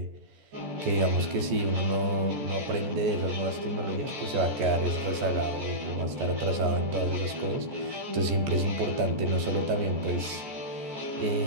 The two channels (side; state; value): left; late; 14 ms